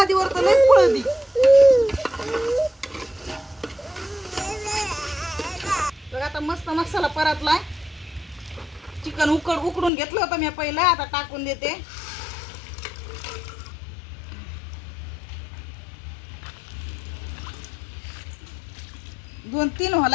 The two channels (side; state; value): right; drops out; at 9.9 s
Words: तर लई पळती. बघ आता मस्त मसाला परतलाय. चिकन उकडून घेतलं होतं मी पहिलं, आता टाकून देते. दोन तीन